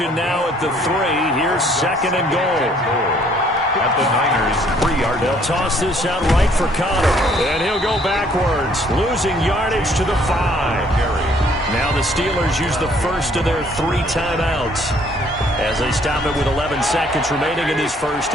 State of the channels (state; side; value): normal; both; correlation 0.62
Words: now at the 3. Here's 2nd and goal. At the Niners, 3-yard. They'll toss this out right for Connor. And he'll go backwards, losing yardage to the 5. Now the Steelers use the first of their 3 timeouts as they stop it with 11 seconds remaining in this first